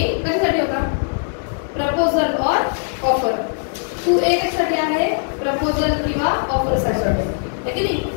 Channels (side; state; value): right; silent; 58 dB below the other